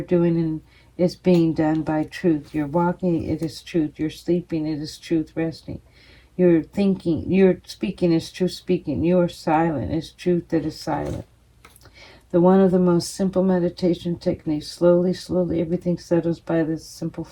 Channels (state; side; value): identical; both; correlation 1.00